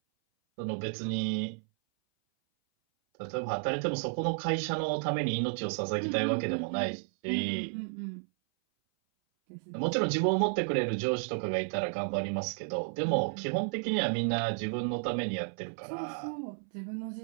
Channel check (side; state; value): left; silent; 56 dB below the other